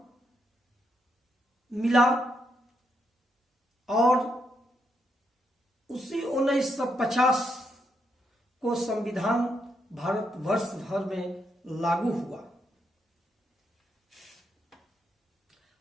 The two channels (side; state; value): both; normal; correlation 0.79